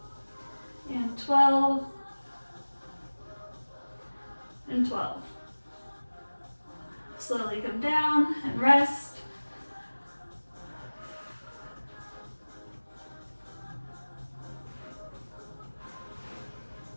and 12, and 12. Slowly come down and rest.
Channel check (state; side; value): inverted; both; correlation -1.00